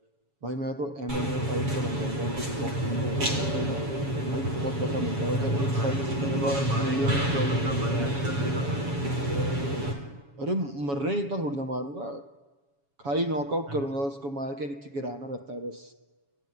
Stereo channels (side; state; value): left; late; 7.2 ms